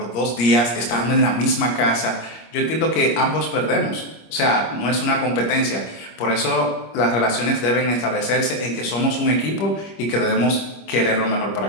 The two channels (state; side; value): late; right; 25 ms